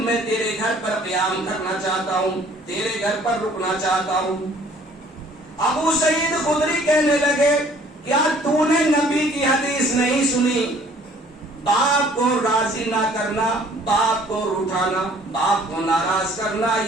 میں تیرے گھر پر قیام کرنا چاہتا ہوں, تیرے گھر پر رکنا چاہتا ہوں. ابو سعید خدری کہنے لگے کیا تو نے نبی کی حدیث نہیں سنی, باپ کو راضی نہ کرنا, باپ کو روٹھانا, باپ کو ناراض کرنا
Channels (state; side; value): normal; both; correlation 0.56